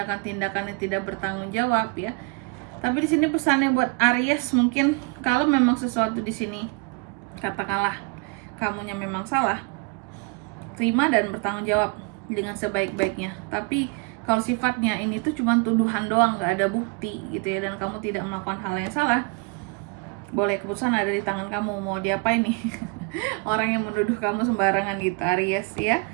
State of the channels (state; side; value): quieter; left; 30.3 dB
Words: yang tidak bertanggung jawab ya. Tapi di sini pesannya buat Aries, mungkin kalau memang sesuatu di sini katakanlah kamunya memang salah, terima dan bertanggung jawab dengan sebaik-baiknya. Tapi kalau sifatnya ini tuh cuma tuduhan doang, nggak ada bukti gitu ya, dan kamu tidak melakukan hal yang salah, boleh, keputusan ada di tangan kamu mau diapain nih orang yang menuduh kamu sembarangan gitu Aries ya.